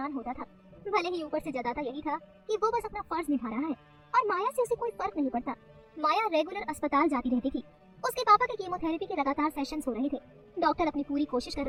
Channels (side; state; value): both; identical; correlation 1.00